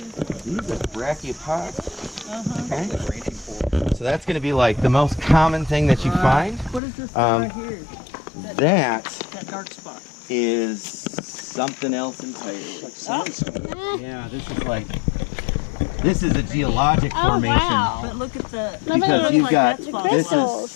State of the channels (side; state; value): right; drops out; at 6.8 s